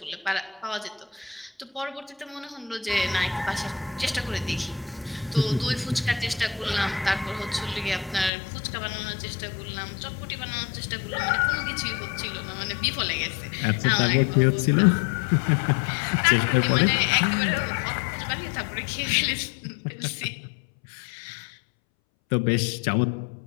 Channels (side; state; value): right; drops out; at 8.3 s